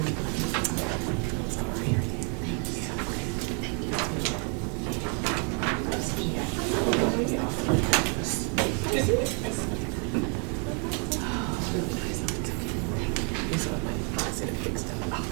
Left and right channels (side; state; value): left; quieter; 37.6 dB